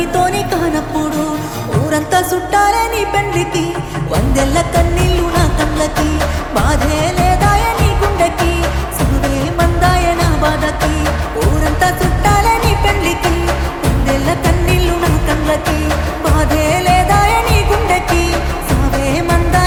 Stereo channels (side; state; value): both; identical; correlation 1.00